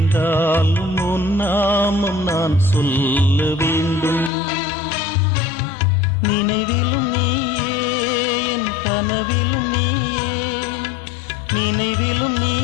உன் நாமம் நான் சொல்ல வேண்டும். நினைவிலும் நீயே, என் கனவிலும் நீயே, நினைவிலும்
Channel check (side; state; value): right; drops out; at 4.3 s